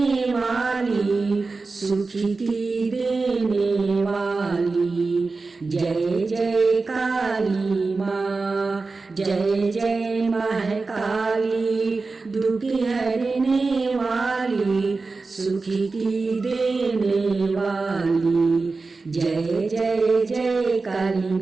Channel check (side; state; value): left; quieter; 3.9 dB